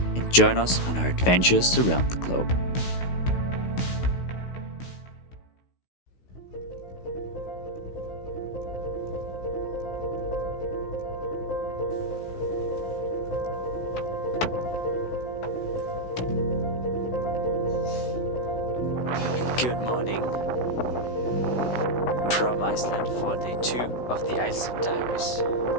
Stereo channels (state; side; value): late; right; 16 ms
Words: and join us on our adventures around the globe. Good morning from Iceland for day 2 of the Iceland Diaries.